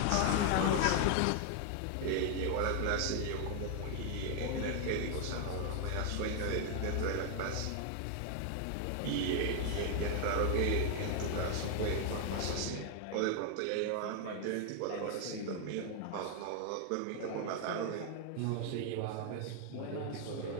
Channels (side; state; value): both; different; correlation 0.00